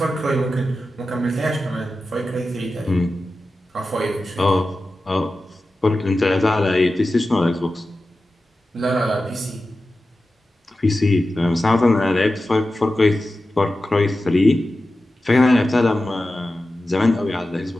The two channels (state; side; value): normal; both; correlation 0.93